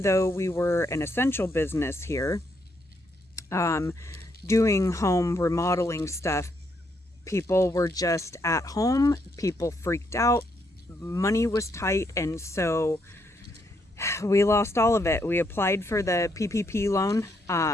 though we were an essential business here, doing home remodeling stuff, people were just at home, people freaked out, money was tight, and so we lost all of it. We applied for the PPP loan.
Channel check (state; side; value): normal; both; correlation 0.75